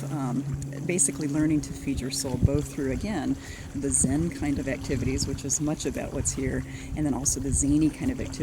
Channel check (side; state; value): both; identical; correlation 1.00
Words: basically learning to feed your soul, both through, again, the Zen kind of activities, which is much about what's here, and then also the zany kind of